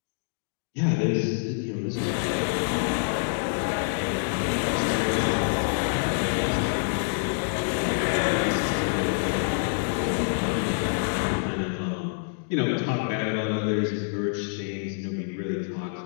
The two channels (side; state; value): right; silent; digital silence